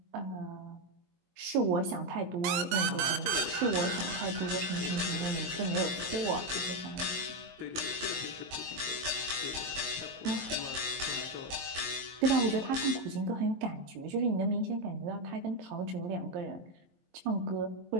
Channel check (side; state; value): left; late; 23 ms